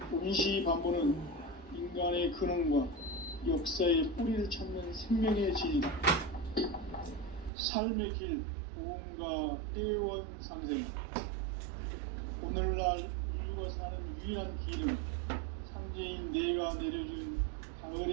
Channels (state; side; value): drops out; left; at 7.5 s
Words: 온시반본은 인간의 근원과 역사의 뿌리를 찾는 생명의 진리다. 삶의 길, 보험과 회원 상생. 오늘날 인류가 사는 유일한 길은 상제인 내가 내려준